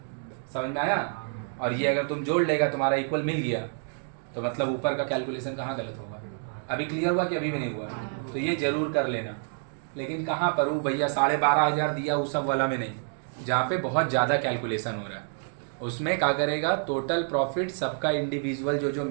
समझ में आया? और ये अगर तुम जोड़ लेगा तुम्हारा इक्वल मिल गया तो मतलब ऊपर का कैलकुलेशन कहाँ गलत होगा? अभी क्लियर हुआ कि अभी भी नहीं हुआ? तो ये जरूर कर लेना। लेकिन कहाँ पर वो भैया 12,500 दिया उस सब वाला में नहीं, जहाँ पे बहुत ज़्यादा कैलकुलेशन हो रहा है उसमें क्या करेगा, टोटल प्रॉफिट सबका इंडिविजुअल जो जो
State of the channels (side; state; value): left; silent; 59 dB below the other